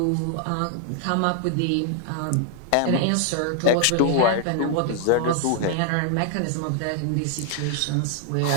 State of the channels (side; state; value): both; different; correlation 0.00